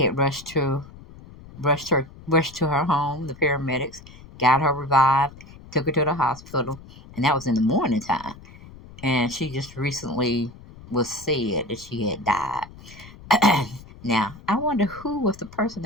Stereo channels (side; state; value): left; noise; rumble, 19 dB below the sound